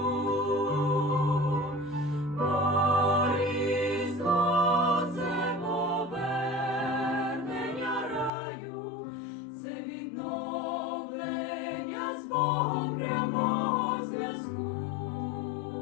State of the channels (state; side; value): drops out; right; at 8.3 s